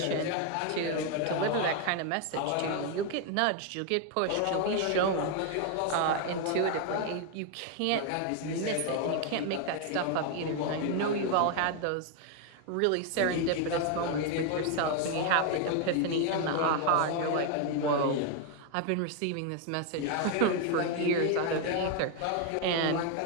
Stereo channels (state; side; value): different; both; correlation 0.01